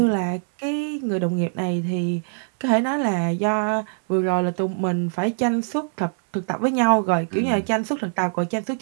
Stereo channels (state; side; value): silent; left; 63 dB below the other